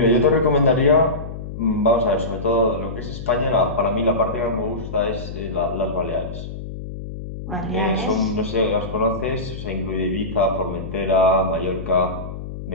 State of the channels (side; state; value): left; noise; hum, 9 dB below the sound